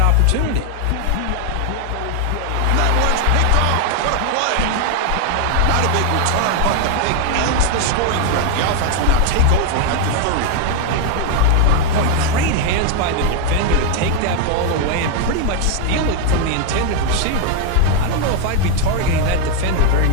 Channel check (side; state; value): both; different; correlation 0.00